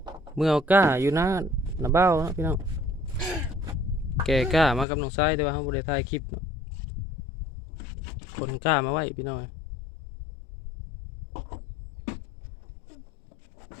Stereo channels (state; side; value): drops out; right; at 4.9 s